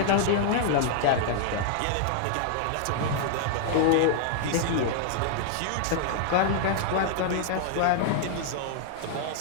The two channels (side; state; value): both; different; correlation -0.01